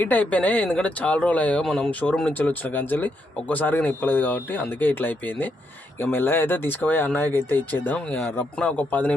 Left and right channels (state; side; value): normal; both; correlation 0.78